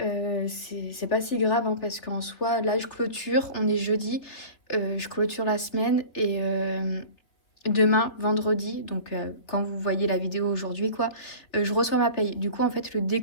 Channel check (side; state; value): right; late; 3.7 ms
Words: pas si grave hein, parce qu'en soi, là je clôture, on est jeudi, je clôture la semaine et demain, vendredi, donc quand vous voyez la vidéo aujourd'hui, quoi, je reçois ma paye. Du coup, en fait, le